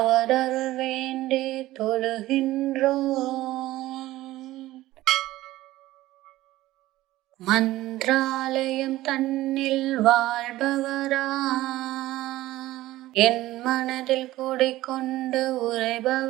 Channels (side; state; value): left; quieter; 16.4 dB